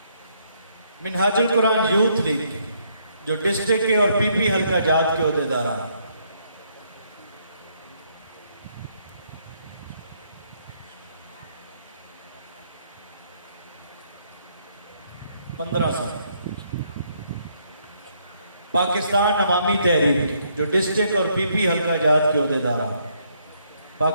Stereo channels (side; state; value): both; inverted; correlation -0.71